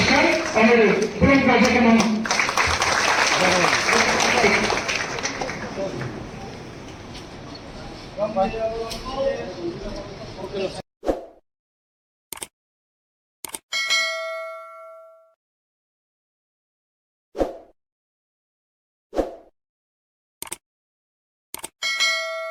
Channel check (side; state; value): both; identical; correlation 1.00